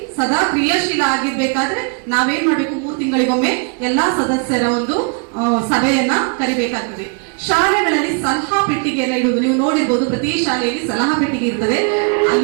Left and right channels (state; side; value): quieter; left; 38.3 dB